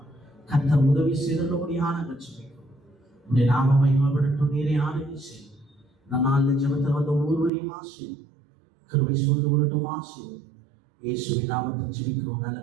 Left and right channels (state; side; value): drops out; left; at 7.5 s